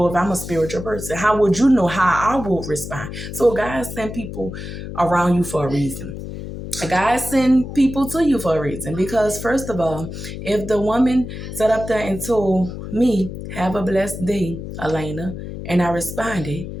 if I'm a spiritual person? How would you know how I will respond? So God sent people around you for a reason. God send people to you for a reason. Because first of all, if the woman sat up there and told me, have a blessed day, Elena, and I responded,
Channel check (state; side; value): noise; left; hum, 9 dB below the sound